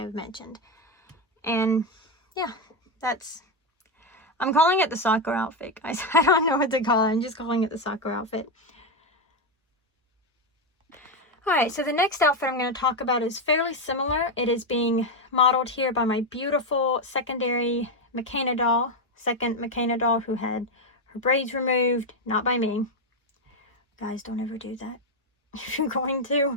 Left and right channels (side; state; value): both; normal; correlation 0.07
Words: mentioned. And yeah, I'm calling it the soccer outfit, guys. I don't know what to call it. I'm just calling it the soccer outfit. Alright, so the next outfit I'm going to talk about is fairly similar. It is being modeled here by my beautiful secondary McKenna doll. Second McKenna doll who had her braids removed. Not by me. Guys, don't ever do that. If you're going